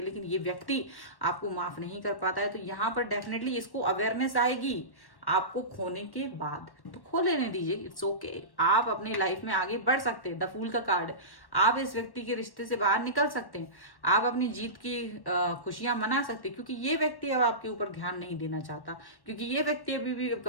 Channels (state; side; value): late; right; 1.1 ms